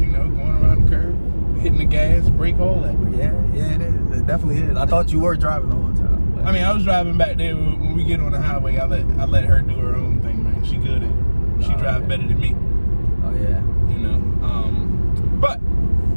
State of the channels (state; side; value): inverted; both; correlation -1.00